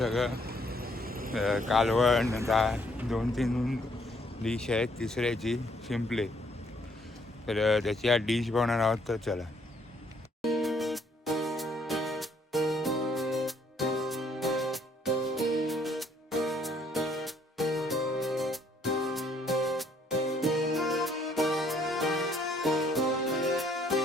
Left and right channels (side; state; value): both; normal; correlation 0.66